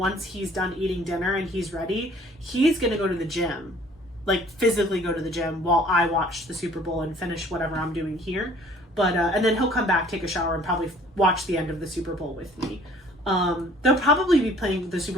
he's done eating dinner and he's ready, he's gonna go to the gym, like physically go to the gym while I watch the Super Bowl and finish whatever I'm doing here. But and then he'll come back, take a shower, and probably watch the end of the Super Bowl with me. They'll probably be playing the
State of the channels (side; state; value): both; normal; correlation 0.54